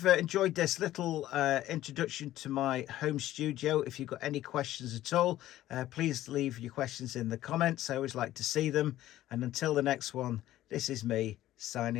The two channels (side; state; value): right; quieter; 14.2 dB